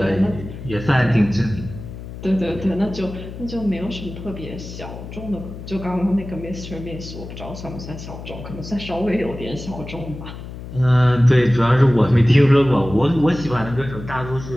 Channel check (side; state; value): left; noise; hum, 11 dB below the sound